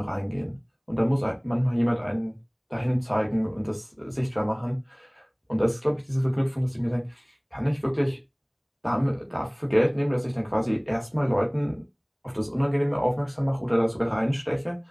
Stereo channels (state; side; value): identical; both; correlation 1.00